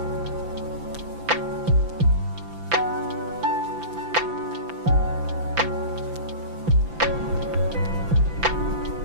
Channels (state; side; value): late; left; 5.9 ms